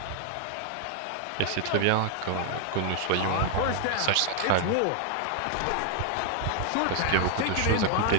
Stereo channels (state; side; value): different; both; correlation 0.00